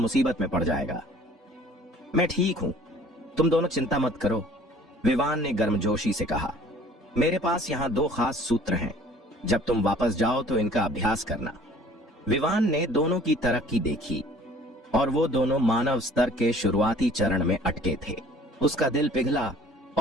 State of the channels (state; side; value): normal; both; correlation 0.52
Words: में पड़ जाएगा। मैं ठीक हूं, तुम दोनों चिंता मत करो, विवान ने गर्मजोशी से कहा। मेरे पास यहाँ 2 खास सूत्र हैं। जब तुम वापस जाओ तो इनका अभ्यास करना। विवान ने दोनों की तरक्की देखी और वो दोनों मानव स्तर के शुरुआती चरण में अटके थे। उसका दिल पिघला